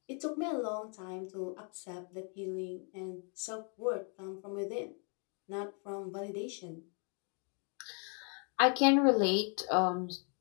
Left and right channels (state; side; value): quieter; right; 39.6 dB